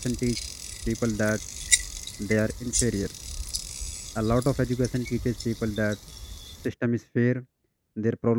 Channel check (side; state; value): both; identical; correlation 1.00